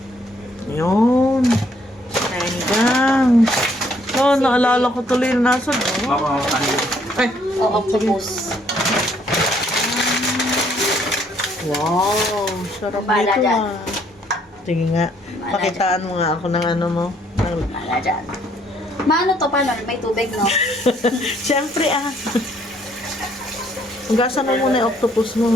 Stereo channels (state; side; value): normal; both; correlation 0.66